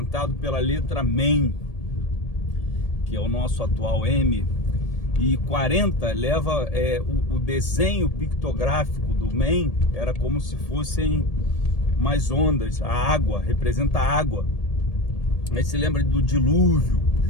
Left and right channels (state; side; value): late; right; 1.8 ms